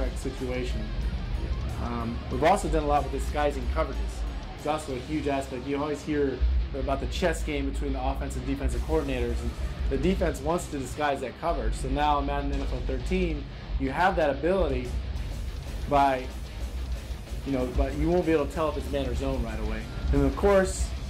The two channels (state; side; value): identical; both; correlation 1.00